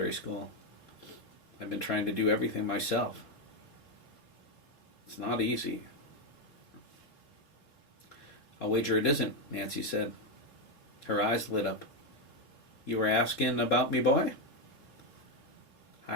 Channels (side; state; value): right; late; 4.0 ms